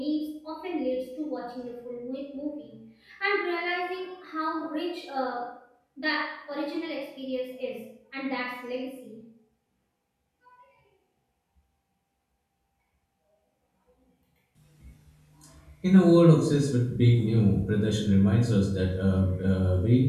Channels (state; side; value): identical; both; correlation 1.00